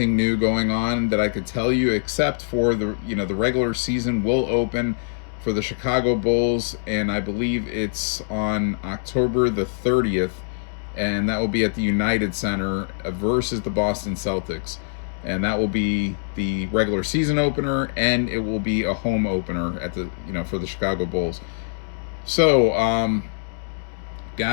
new going on that I could tell you except for the regular season will open for the Chicago Bulls, and I believe it's on October the 30th, and that will be at the United Center versus the Boston Celtics. And that will be the regular season opener, and it will be a home opener at the for the Chicago Bulls. So,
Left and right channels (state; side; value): silent; right; digital silence